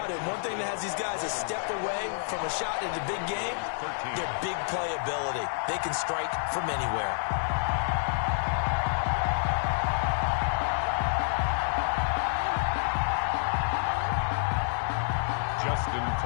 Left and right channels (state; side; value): silent; right; digital silence